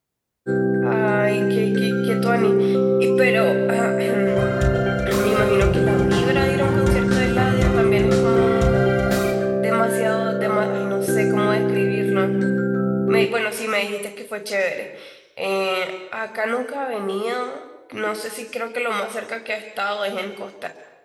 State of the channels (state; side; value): identical; both; correlation 1.00